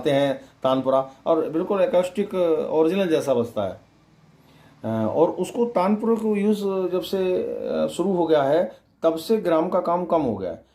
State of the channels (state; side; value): identical; both; correlation 1.00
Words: हैं तानपुरा, और बिल्कुल एकॉस्टिक ओरिजिनल जैसा बजता है। और उसको तानपुरे को यूज़ जब से शुरू हो गया है, तब से ग्राम का काम कम हो गया है।